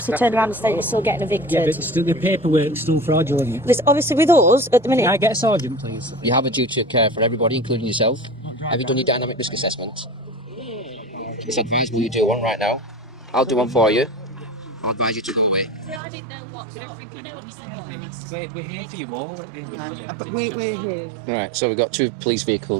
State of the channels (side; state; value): left; drops out; at 16.0 s